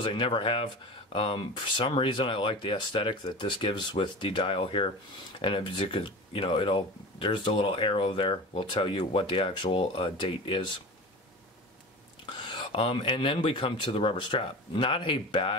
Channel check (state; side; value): normal; both; correlation 0.32